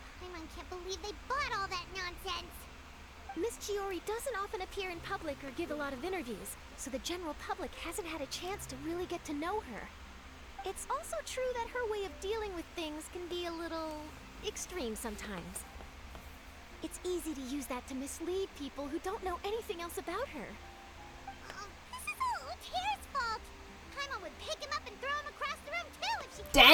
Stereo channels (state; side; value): identical; both; correlation 1.00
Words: Paimon can't believe they bought all that nonsense. Miss Chiori doesn't often appear in public or give a lot of interviews, so the general public hasn't had a chance to really get to know her. It's also true that her way of dealing with things can be a little extreme sometimes. It's easy to use that to mislead people who don't know anything else about her. This is all Luter's fault. Paimon would pick him up and throw him across the room too if she could.